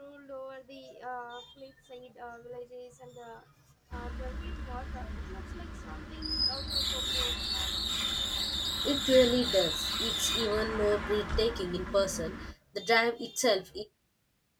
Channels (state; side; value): identical; both; correlation 1.00